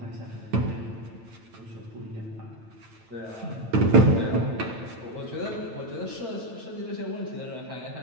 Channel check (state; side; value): late; left; 8.9 ms